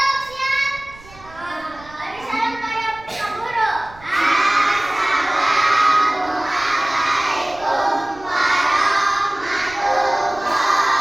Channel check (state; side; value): noise; right; rumble, 22 dB below the sound